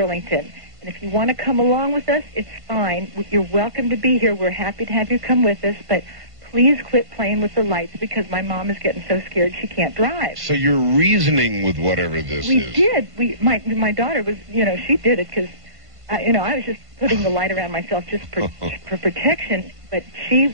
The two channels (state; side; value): late; left; 1.5 ms